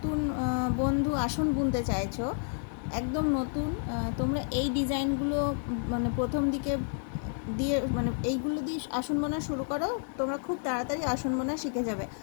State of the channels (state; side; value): silent; right; 58 dB below the other